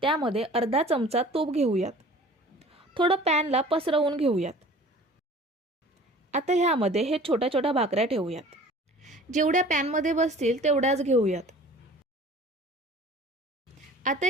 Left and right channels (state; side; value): normal; both; correlation 0.46